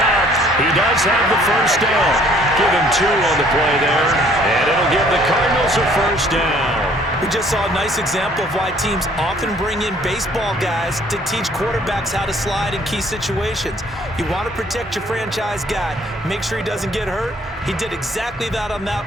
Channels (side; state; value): both; normal; correlation 0.59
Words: He does have the first down. Give him 2 on the play there. And it'll give the Cardinals a first down. We just saw a nice example of why teams often bring in baseball guys to teach quarterbacks how to slide in key situations. You want to protect your franchise guy. Make sure he doesn't get hurt. He did exactly that on